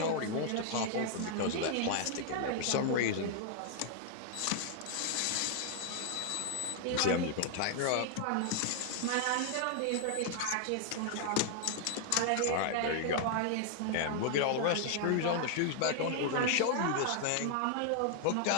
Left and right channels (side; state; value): both; different; correlation 0.00